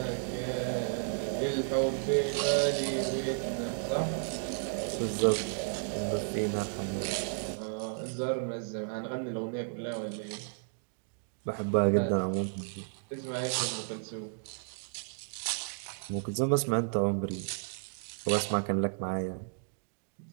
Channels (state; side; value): silent; left; digital silence